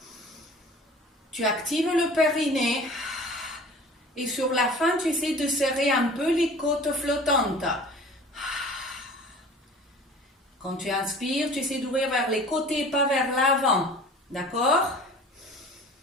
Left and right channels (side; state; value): both; normal; correlation 0.44